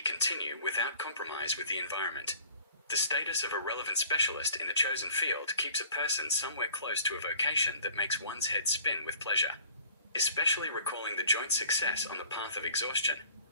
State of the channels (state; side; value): inverted; both; correlation -0.50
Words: continue without compromise with the environment. The status of a relevant specialist in the chosen field keeps a person somewhere close to a vocation that makes one's head spin with pleasure. Especially recalling the joint success on the path of exhaustion,